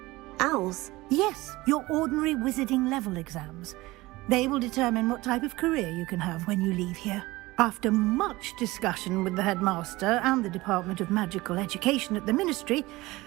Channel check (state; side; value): quieter; left; 20.1 dB